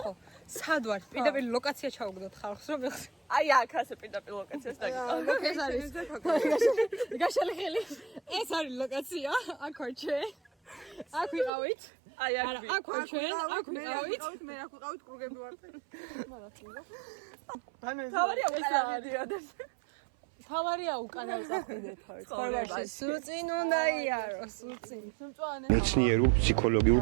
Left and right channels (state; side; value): drops out; left; at 11.5 s